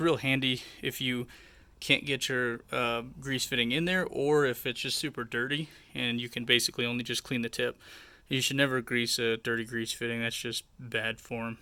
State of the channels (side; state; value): both; identical; correlation 1.00